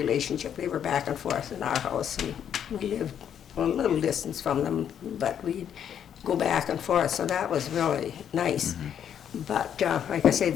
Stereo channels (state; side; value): quieter; right; 9.0 dB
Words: They were back and forth in our house, and we lived a little distance from them, but we'd go back and forth, so that was really nice. But like I say,